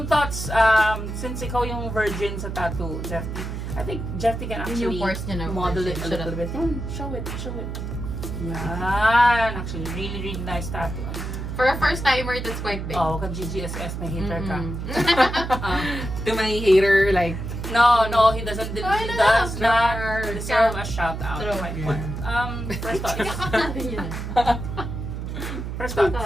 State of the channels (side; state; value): right; noise; hum, 6 dB below the sound